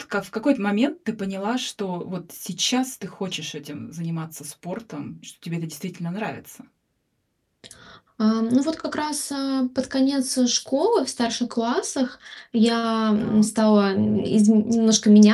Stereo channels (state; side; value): identical; both; correlation 1.00